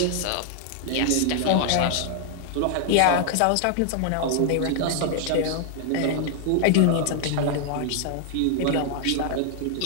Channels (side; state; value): both; different; correlation 0.00